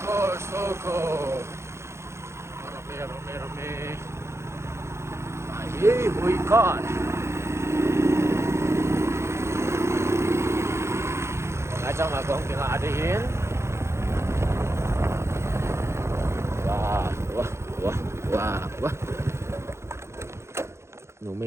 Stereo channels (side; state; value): left; late; 0.13 ms